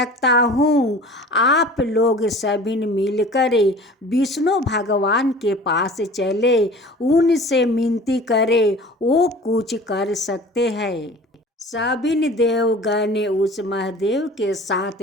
हूँ। आप लोग सभी मिलकर विष्णु भगवान के पास चले, उनसे विनती करें, वो कुछ कर सकते हैं। सभी देवगण उस महादेव के साथ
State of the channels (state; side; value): normal; both; correlation 0.43